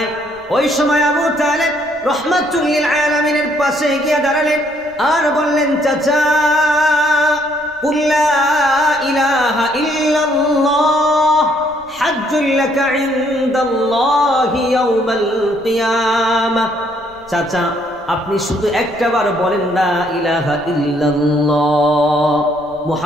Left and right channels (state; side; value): noise; left; rumble, 28 dB below the sound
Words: ওই সময় আবু তালিব রাহমাতুল লিল আলামিনের পাশে গিয়ে দাঁড়ালেন আর বললেন, চাচা কুল লা ইলাহা ইল্লাল্লাহ হাজ্জুল লাকা ইনদাল্লাহি ইয়াউমাল কিয়ামাহ। চাচা আপনি শুধু একটাবার বলেন লা ইলাহা ইল্লাল্লাহ